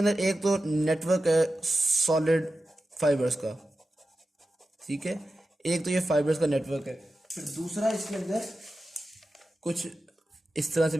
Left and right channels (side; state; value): both; normal; correlation 0.93